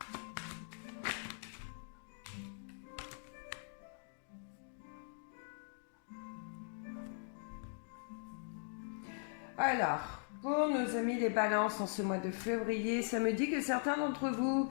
Alors, pour nos amis les balances en ce mois de février, ça me dit que certains d'entre vous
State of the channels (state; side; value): silent; right; digital silence